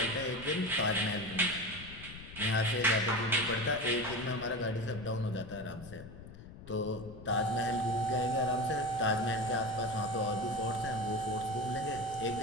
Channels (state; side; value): noise; left; rumble, 14 dB below the sound